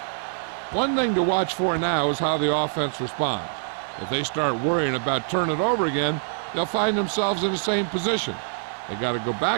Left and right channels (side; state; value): left; silent; digital silence